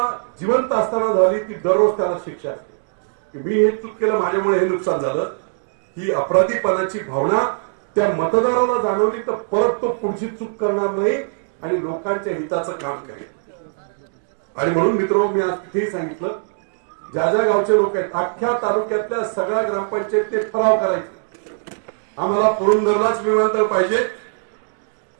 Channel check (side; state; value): left; silent; digital silence